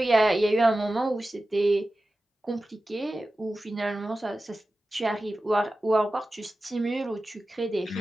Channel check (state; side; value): normal; both; correlation 0.94